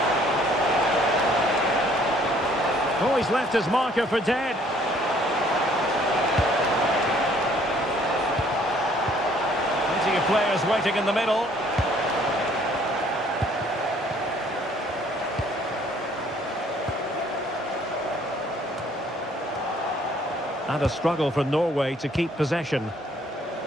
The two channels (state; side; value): normal; both; correlation 0.60